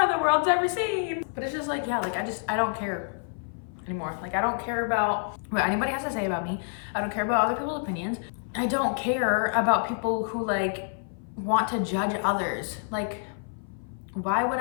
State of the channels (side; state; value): right; silent; 56 dB below the other